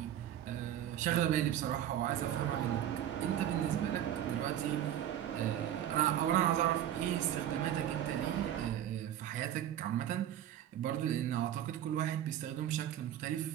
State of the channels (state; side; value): quieter; left; 11.1 dB